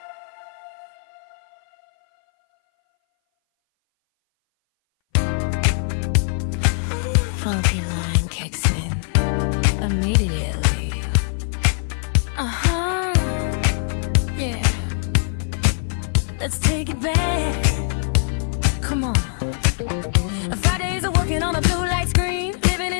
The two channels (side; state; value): right; silent; 60 dB below the other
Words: funky line kicks in immediately. Yeah. Let's take it back. Come on. Fridays are working on a blue light screen, living